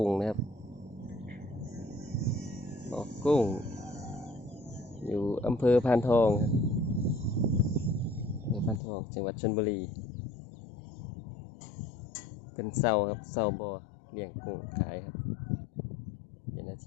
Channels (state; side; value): drops out; right; at 8.8 s